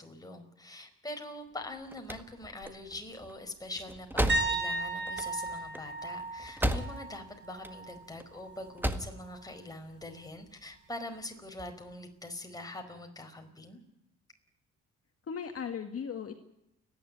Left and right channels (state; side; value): normal; both; correlation 0.52